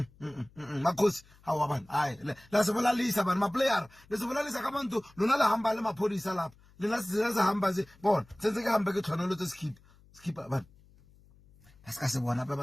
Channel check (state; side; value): noise; left; hum, 27 dB below the sound